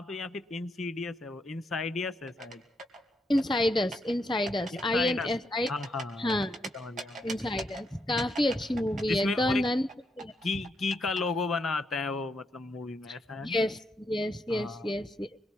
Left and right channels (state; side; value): normal; both; correlation 0.79